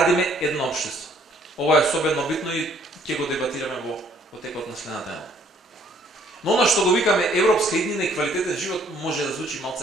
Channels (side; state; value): both; normal; correlation 0.62